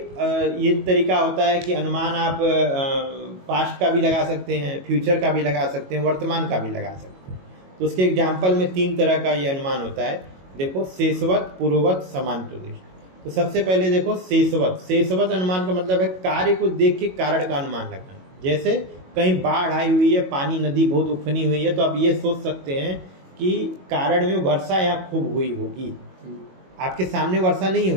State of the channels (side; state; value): left; late; 22 ms